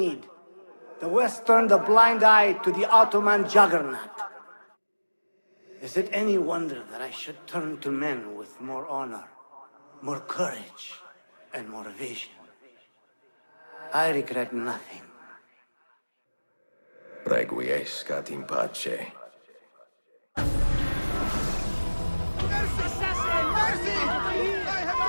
The West turned a blind eye to the Ottoman juggernaut. Is it any wonder that I should turn to men with more honor, more courage, and more vision? I regret nothing. Requiescat in pace. Assassin! Mercy! I have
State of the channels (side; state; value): both; inverted; correlation -1.00